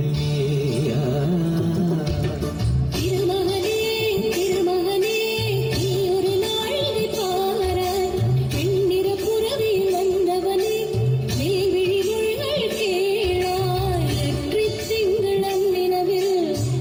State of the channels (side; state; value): both; identical; correlation 1.00